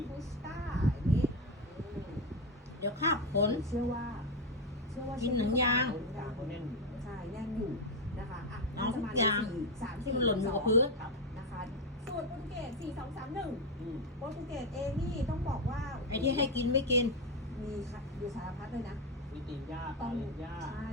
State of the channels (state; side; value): normal; both; correlation 0.10